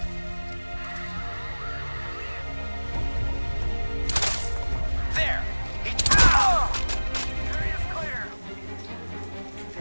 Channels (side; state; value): both; inverted; correlation -1.00